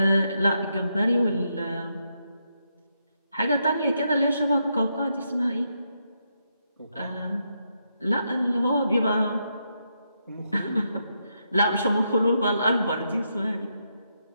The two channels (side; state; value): both; inverted; correlation -0.81